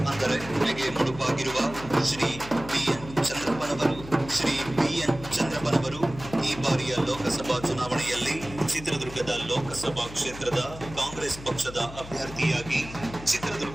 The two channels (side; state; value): left; noise; hum, 14 dB below the sound